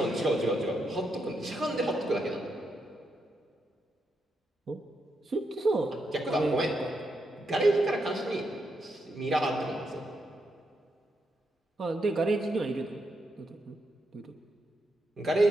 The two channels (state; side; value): normal; both; correlation 0.82